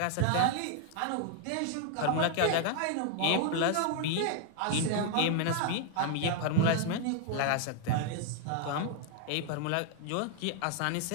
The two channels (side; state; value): both; different; correlation 0.00